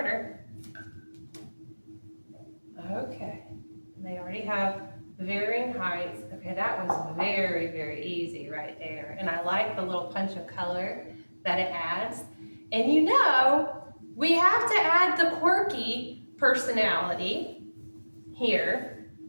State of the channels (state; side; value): inverted; both; correlation -1.00